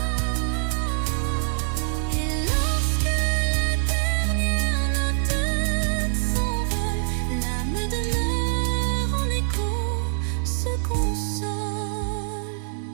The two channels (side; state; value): left; silent; 60 dB below the other